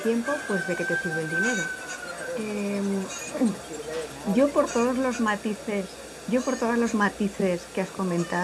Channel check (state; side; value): identical; both; correlation 1.00